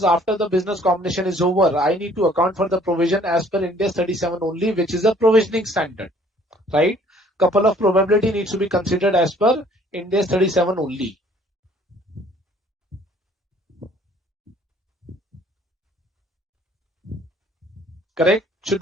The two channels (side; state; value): both; normal; correlation 0.58